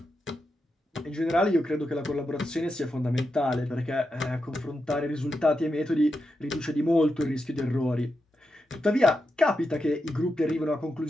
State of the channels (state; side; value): normal; both; correlation 0.87